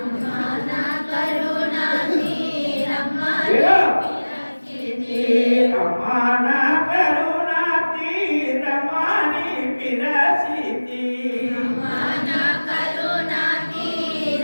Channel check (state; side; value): inverted; both; correlation -1.00